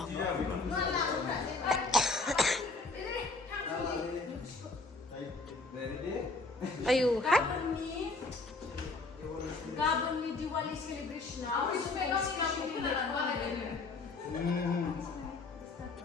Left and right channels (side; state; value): right; quieter; 3.5 dB